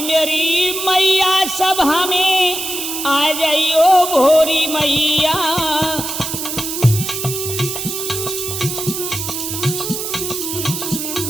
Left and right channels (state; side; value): noise; right; hiss, 5 dB below the sound